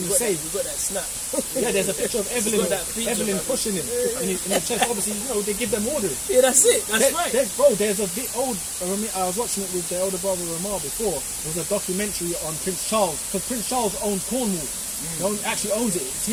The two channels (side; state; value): both; identical; correlation 1.00